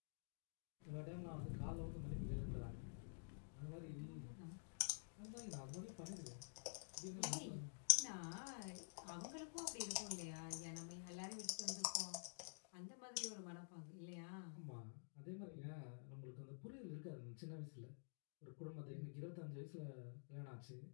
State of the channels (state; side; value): silent; right; digital silence